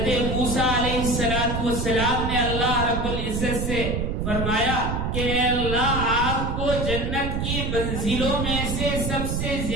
موسیٰ علیہ السلام نے اللہ رب العزت سے فرمایا کہ اے اللہ، آپ کو جنت کی منزلوں میں سے سب سے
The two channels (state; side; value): noise; right; rumble, 1 dB below the sound